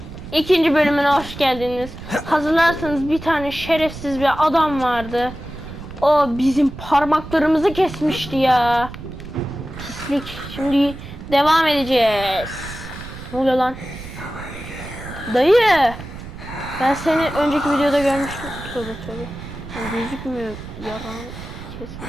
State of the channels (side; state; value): right; noise; rumble, 12 dB below the sound